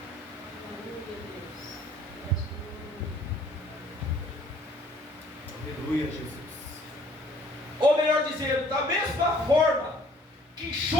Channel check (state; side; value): normal; both; correlation 0.57